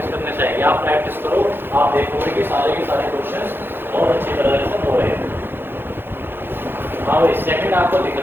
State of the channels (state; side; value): late; left; 0.10 ms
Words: करने से आएगी। आप प्रैक्टिस करो, आप देखोगे कि सारे के सारे क्वेश्चन बहुत अच्छी तरह से हो रहे हैं। हाँ भाई, सेकंड आपको दिख